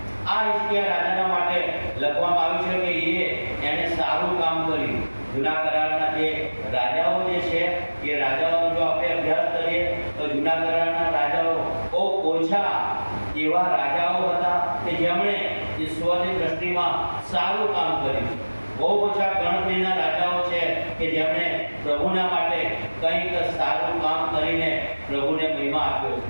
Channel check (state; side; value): inverted; both; correlation -1.00